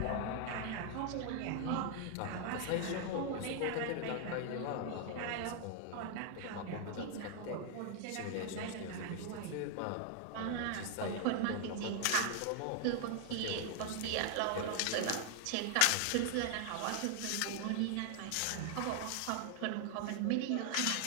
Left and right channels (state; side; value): different; both; correlation 0.00